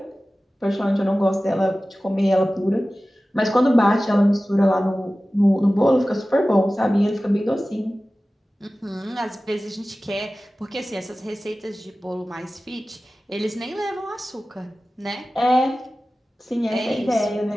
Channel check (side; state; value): both; normal; correlation 0.96